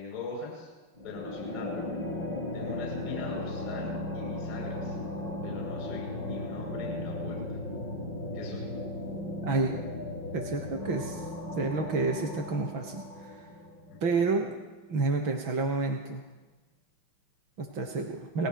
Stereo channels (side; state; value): left; late; 6.1 ms